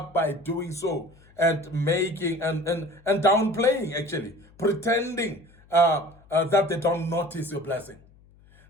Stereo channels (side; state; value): left; noise; hum, 27 dB below the sound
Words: by doing so and making and downplaying, actually, pretending that they don't notice your blessing.